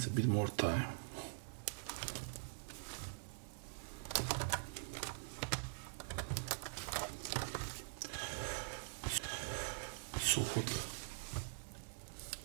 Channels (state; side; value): silent; left; digital silence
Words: a bit more time. So hot.